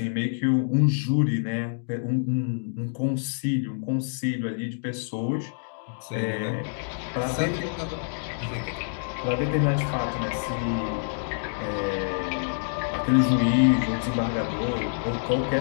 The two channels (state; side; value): silent; right; digital silence